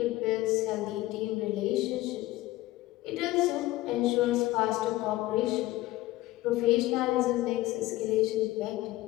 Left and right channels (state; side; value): quieter; right; 17.3 dB